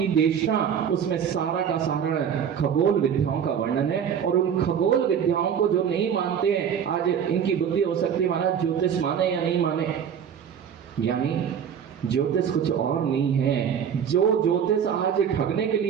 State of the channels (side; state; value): left; quieter; 8.0 dB